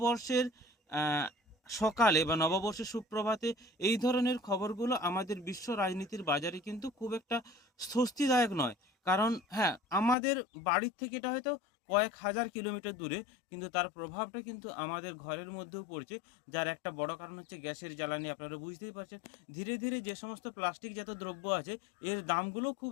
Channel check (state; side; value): drops out; right; at 10.2 s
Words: আহ, সকালে বা নববর্ষের সুপ্রভাতে এই ধরনের খবরগুলো আমাদের বিশ্ব রাজনীতির বাজারে কিন্তু খুব একটা স্বস্তিদায়ক নয়। কারণ হ্যাঁ, আমাদের বাড়ির থেকে এটা হয়তো কয়েক হাজার কিলোমিটার দূরে, কিন্তু তার প্রভাবটা কিন্তু আমাদের ঘরের মধ্যেও পড়ছে। যার একটা বড় কারণ হচ্ছে গ্যাসের জ্বালানি। আপনারা বুঝতেই পারছেন, ধীরে ধীরে যে সমস্ত প্লাস্টিক জাত দ্রব্য আছে, এর দামগুলো খুব